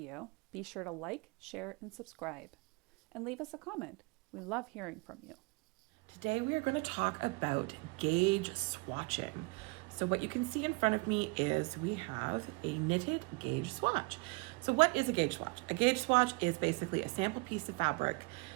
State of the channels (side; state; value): left; quieter; 28.2 dB